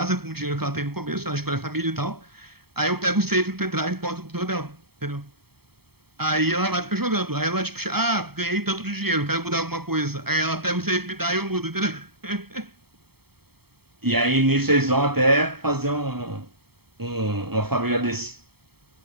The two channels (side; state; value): left; late; 0.96 ms